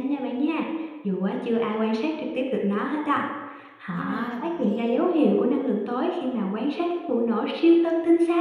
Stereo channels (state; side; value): identical; both; correlation 1.00